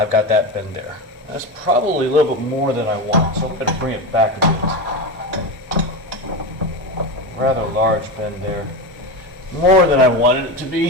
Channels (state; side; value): normal; both; correlation 0.20